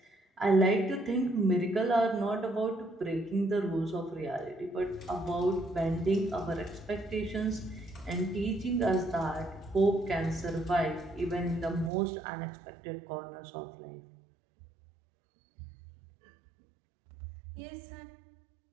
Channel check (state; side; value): drops out; left; at 11.9 s